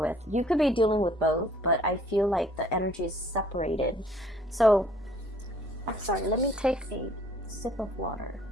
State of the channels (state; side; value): normal; both; correlation 0.58